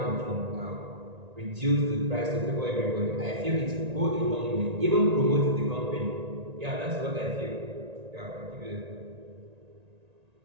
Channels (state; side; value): late; left; 1.9 ms